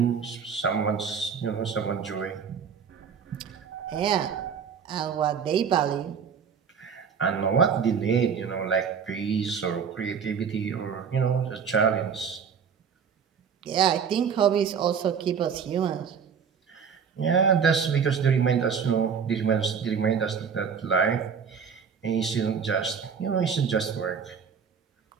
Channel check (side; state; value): left; quieter; 6.7 dB